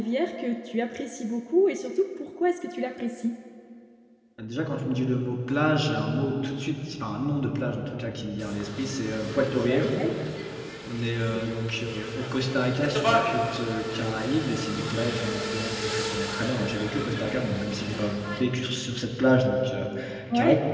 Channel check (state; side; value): identical; both; correlation 1.00